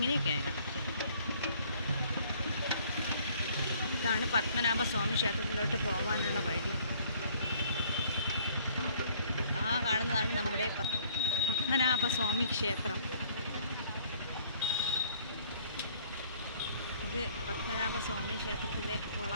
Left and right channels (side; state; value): both; inverted; correlation -0.59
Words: ഇതാണ് പത്മനാഭസ്വാമി ക്ഷേത്രത്തിലോട്ട് പോകാനുള്ള വഴി. ആ കാണുന്നതാണ് നമ്മുടെ പത്മനാഭസ്വാമി ക്ഷേത്രം. ഇത് പത്മനാഭസ്വാമി ക്ഷേത്രത്തിലെ